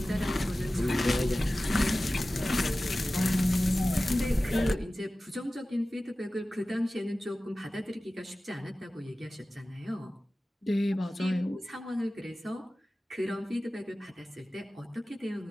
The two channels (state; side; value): normal; both; correlation 0.96